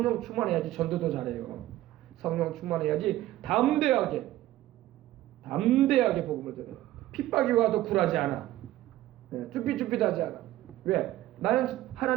충만해야지 전도도 잘해요. 성령 충만해야지 담대하게 복음을 전해요. 핍박이 와도 굴하지 않아. 쭈삣쭈삣하지 않아. 왜? 나는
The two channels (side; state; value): left; quieter; 15.1 dB